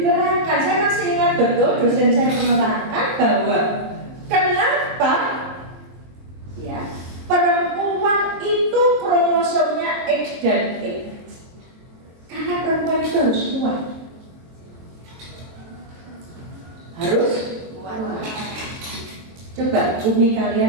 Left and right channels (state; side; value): late; left; 23 ms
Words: saya masih ingat betul dosen saya menerangkan bahwa kenapa ya perempuan itu kromosomnya X dan X. Karena perempuan itu harus kuat. Harus kuat. Coba umi